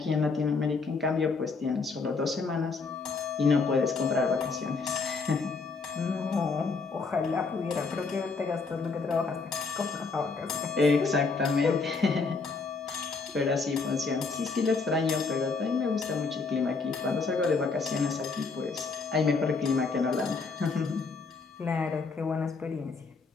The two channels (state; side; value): quieter; right; 4.4 dB